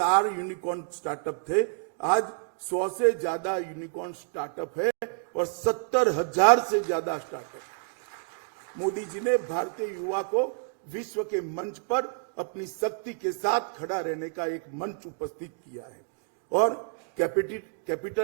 यूनिकॉर्न स्टार्टअप थे, आज 100 से ज्यादा यूनिकॉर्न स्टार्टअप है और 70,000 से ज्यादा स्टार्टअप। मोदी जी ने भारतीय युवा को विश्व के मंच पर अपनी शक्ति के साथ खड़ा रहने का एक मंच उपस्थित किया है, और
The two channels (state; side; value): silent; left; 59 dB below the other